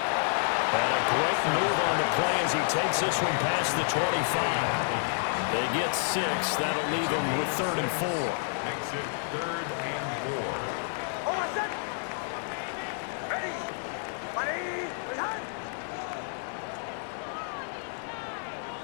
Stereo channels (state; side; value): silent; right; 58 dB below the other